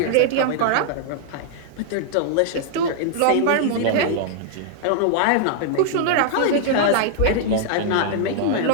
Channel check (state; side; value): different; both; correlation -0.01